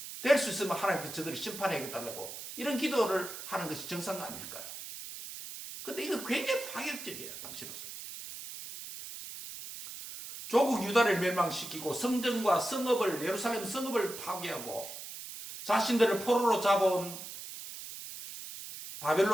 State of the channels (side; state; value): right; noise; hiss, 10 dB below the sound